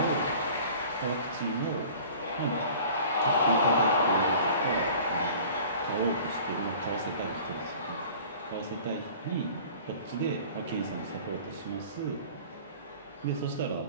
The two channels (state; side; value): inverted; both; correlation -0.45